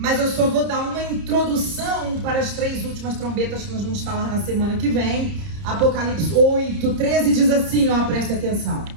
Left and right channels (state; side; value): late; left; 30 ms